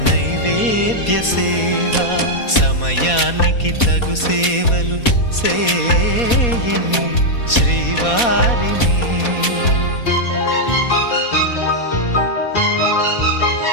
నైవేద్య సేవ సమయానికి తగు సేవలు సేయని శ్రీవారిని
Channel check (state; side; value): late; right; 4.2 ms